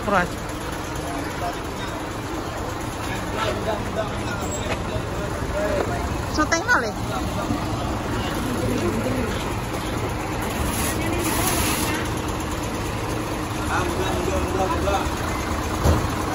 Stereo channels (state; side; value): identical; both; correlation 1.00